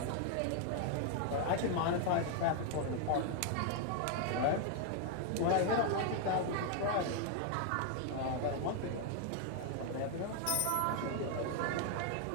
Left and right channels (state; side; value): different; both; correlation 0.00